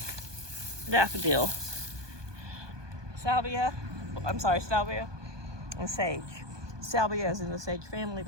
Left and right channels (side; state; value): left; late; 1.2 ms